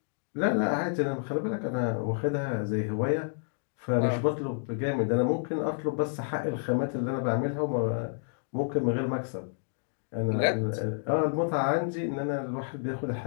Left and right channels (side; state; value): right; silent; digital silence